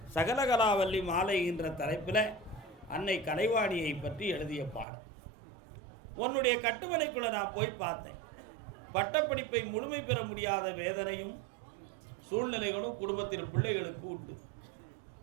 சகலகலாவல்லி மாலை என்ற தலைப்பில் அன்னை கலைவாணியை பற்றி எழுதிய பாடல். உன்னுடைய கட்டுமனைக்குள்ள நான் போய் பார்த்தேன். பட்டப்படிப்பை முழுமை பெற முடியாத வேதனையும் சூழ்நிலைகளும் குடும்பத்தின் பிள்ளைகளுக்கு உண்டு.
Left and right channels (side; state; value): left; drops out; at 4.9 s